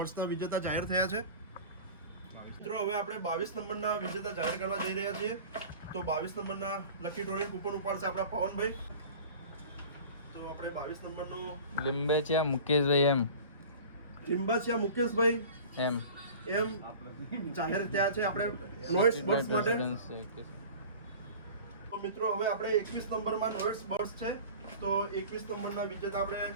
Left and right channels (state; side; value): inverted; both; correlation -0.39